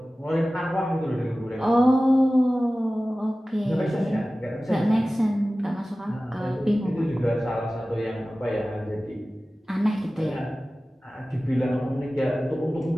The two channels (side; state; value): both; normal; correlation 0.96